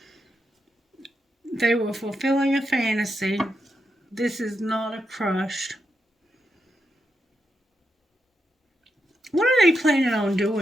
They were fulfilling a fantasy. This is not a crush. What are they planning on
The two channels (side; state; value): both; normal; correlation 0.85